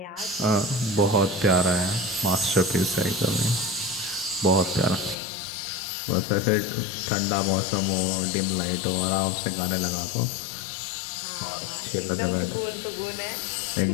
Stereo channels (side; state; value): right; drops out; at 5.2 s